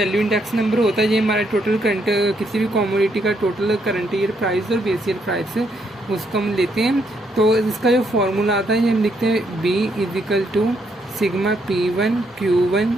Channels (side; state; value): both; normal; correlation 0.74